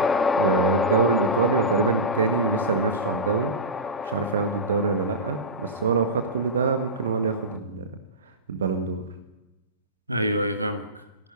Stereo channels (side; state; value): both; normal; correlation -0.15